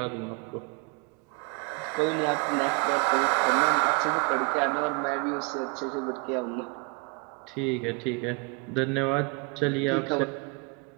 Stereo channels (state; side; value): quieter; left; 31.9 dB